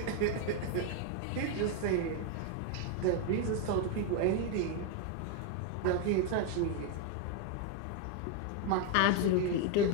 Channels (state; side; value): different; both; correlation 0.01